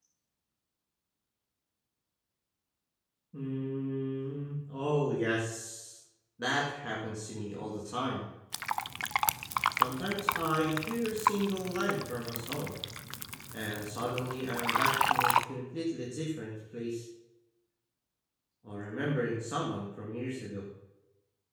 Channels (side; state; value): both; identical; correlation 1.00